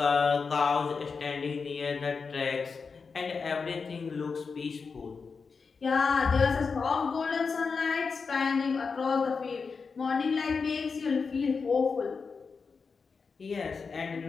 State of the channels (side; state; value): right; quieter; 5.1 dB